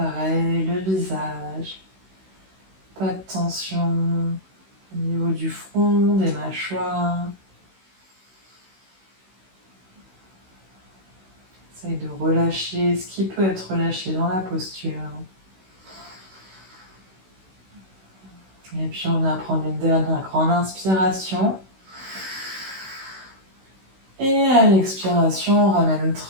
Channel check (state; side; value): late; left; 16 ms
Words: le visage. Pas de tension au niveau du front, des mâchoires. Essaye de relâcher ce qui peut être relâché dans la posture. Et puis on va prendre une dernière grande inspiration. Et à l'expiration, on ramène